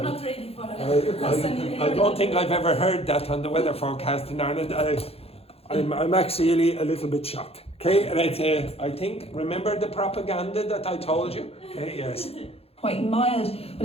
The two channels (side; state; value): right; late; 0.29 ms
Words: not ready for it. I don't think I've ever heard that on the weather forecast in Ireland. I'm actually a little bit shocked. Okay, and I think, remember the propaganda that I told you? Okay, yes. quite mild,